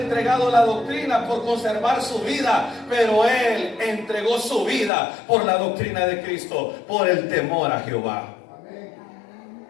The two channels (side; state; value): right; drops out; at 4.9 s